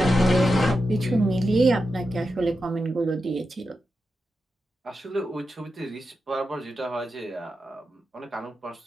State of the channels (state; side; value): normal; both; correlation 0.89